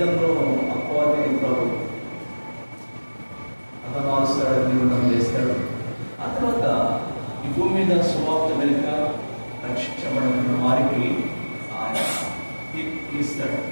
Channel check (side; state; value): both; inverted; correlation -1.00